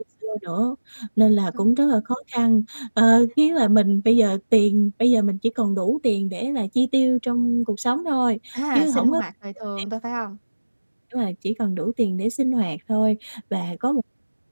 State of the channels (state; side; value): inverted; both; correlation -1.00